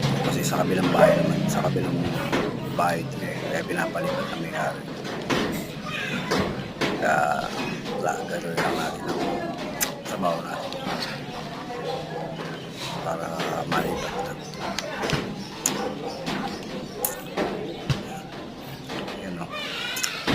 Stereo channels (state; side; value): identical; both; correlation 1.00